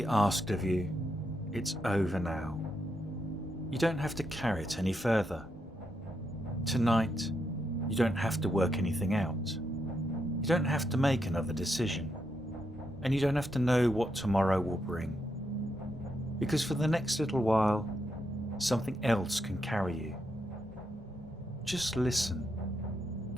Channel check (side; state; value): both; normal; correlation 0.81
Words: asked of you, it's over now. You don't have to carry it any further. Tonight, you don't have to work anything out. You don't have to make another decision. And you don't have to know what tomorrow will bring. Because for the next little while, something else can carry you. Just listen.